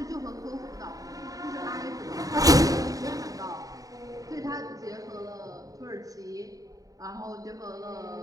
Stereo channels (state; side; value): late; left; 0.17 ms